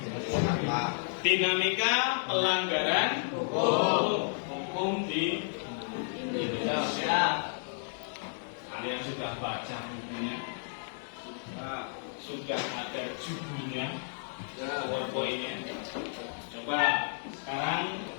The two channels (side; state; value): right; silent; 56 dB below the other